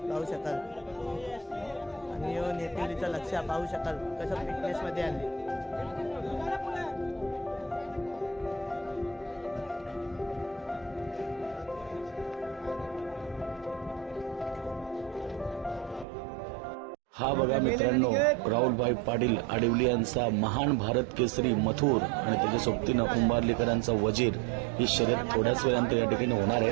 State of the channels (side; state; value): left; drops out; at 16.1 s